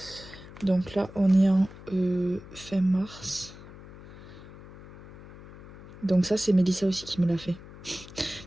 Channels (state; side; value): noise; left; hum, 17 dB below the sound